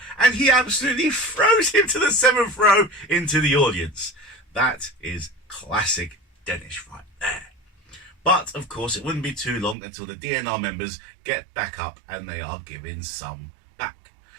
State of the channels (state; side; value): drops out; left; at 9.8 s